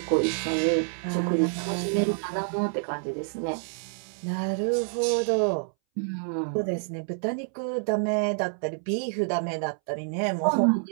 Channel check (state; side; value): silent; left; 60 dB below the other